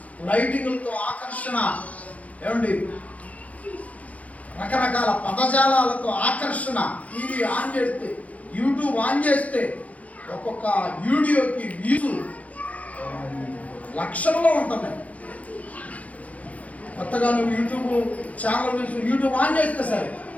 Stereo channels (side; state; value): right; late; 0.067 ms